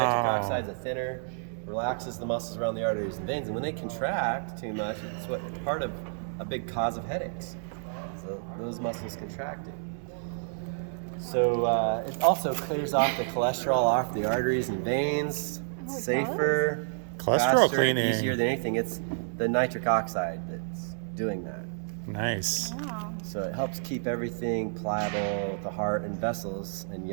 oxide's a thinner, relaxes the muscles around the arteries and veins, and when they contract too much, it's what part of a big cause of headaches. So those muscles contracting. So it also clears off the cholesterol off the arteries and veins. It's Oh, it safer, Cholesterol faster, cleaning. easier than anything. It's the nitric oxide that's doing that. Nice. Wow. So it helps keep everything pliable, the heart and vessels, and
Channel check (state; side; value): silent; left; 58 dB below the other